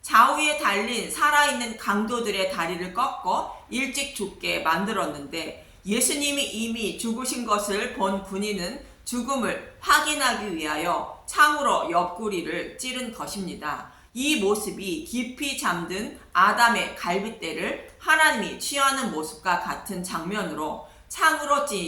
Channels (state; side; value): identical; both; correlation 1.00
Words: 좌우에 달린 살아있는 강도들의 다리를 꺾어 일찍 죽게 만들었는데 예수님이 이미 죽으신 것을 본 군인은 죽음을 확인하기 위하여 창으로 옆구리를 찌른 것입니다. 이 모습이 깊이 잠든 아담의 갈빗대를 하나님이 취하는 모습과 같은 장면으로 창으로